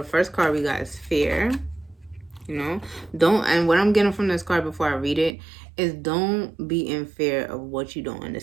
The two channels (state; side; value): drops out; left; at 5.4 s